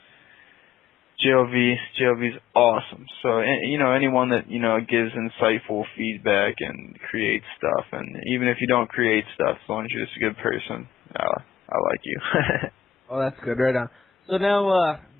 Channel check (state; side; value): quieter; right; 10.1 dB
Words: JLV's awesome. So anyone that gives insightful feedback and creates stuff, and even if you don't create stuff, as long as you're just a good person, I like you. Oh, that's good. Right on. So now